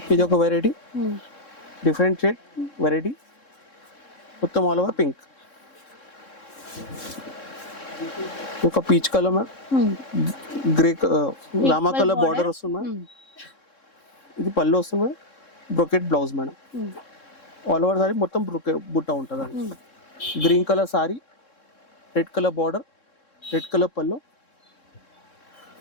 ఇది ఒక వెరైటీ, డిఫరెంట్ షేడ్ వెరైటీ, మొత్తం ఆల్ ఓవర్ పింక్. ఒక peach colour ma'am, grey Rama colour border వస్తుంది మ్యామ్. ఇది పళ్ళు వస్తుంది ma'am, brocade blouse madam. All over sari మొత్తం బుట్ట ఉంటుంది అండి. Green colour sorry, red colour border, red colour పళ్ళు,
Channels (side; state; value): right; late; 3.7 ms